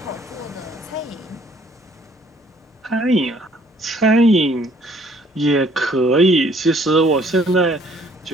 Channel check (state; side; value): normal; both; correlation 0.61